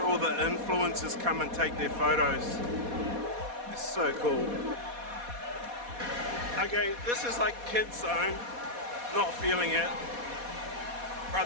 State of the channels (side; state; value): left; late; 4.2 ms